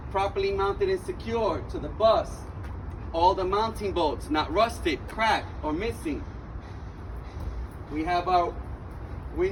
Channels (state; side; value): identical; both; correlation 1.00